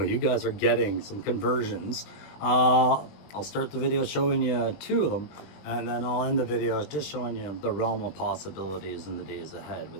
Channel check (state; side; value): late; right; 20 ms